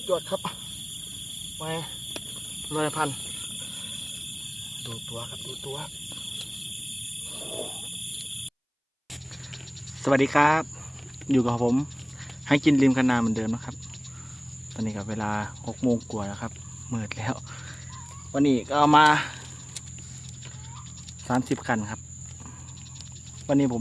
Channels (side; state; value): both; identical; correlation 1.00